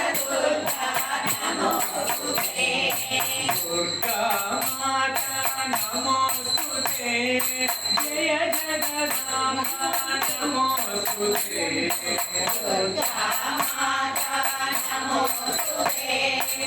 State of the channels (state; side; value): identical; both; correlation 1.00